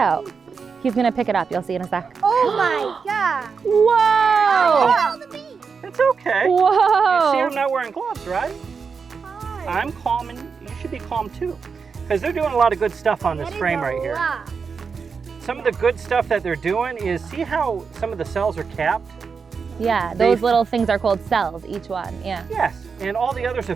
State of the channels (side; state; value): left; quieter; 5.5 dB